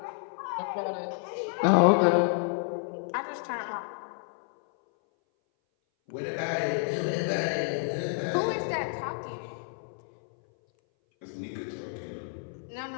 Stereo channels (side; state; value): right; silent; 58 dB below the other